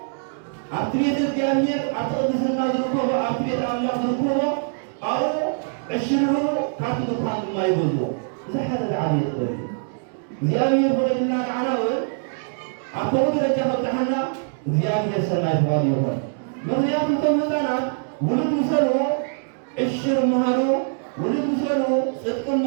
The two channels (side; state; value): left; silent; digital silence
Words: ኣብቲ ቤተ እግዚኣብሔር ኣብቲ ቅድስና ዝርከቦ ኣብቲ ቤተ ኣምላኽ ዝርከቦ ኣብኡ ዕሽርሩ ካብቲ ድኳን ድማ ይገዝዎ እዚ ሓደ ዝዓበየ ጥበብ እዩ እግዚኣብሔር ፈቒድልና ንዓና እውን ኣብ ከምኡ ደረጃ ከብፅሓና እግዚኣብሔር ሰናይ ተባሂሉ ይኹን ምክንያቱ እቶም ህፃናት ውሉድ ምሰሉ ዕሽር መሃሩ ውሉድ ምሰሉ ፅድቂ